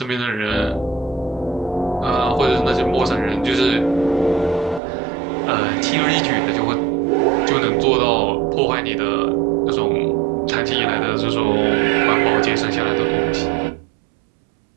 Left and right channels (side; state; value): left; drops out; at 4.8 s